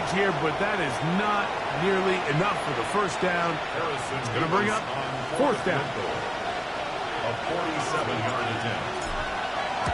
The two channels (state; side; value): identical; both; correlation 1.00